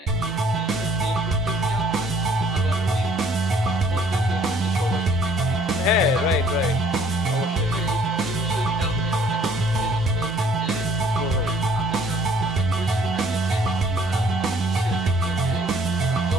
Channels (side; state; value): both; normal; correlation 0.58